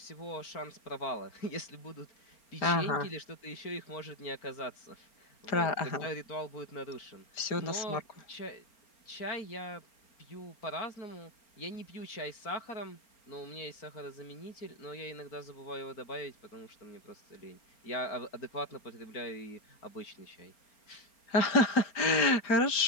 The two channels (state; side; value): late; right; 4.3 ms